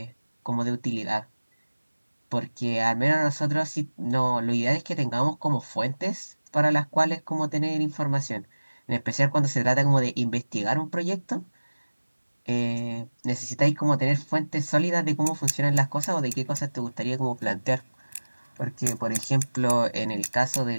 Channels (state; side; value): inverted; both; correlation -1.00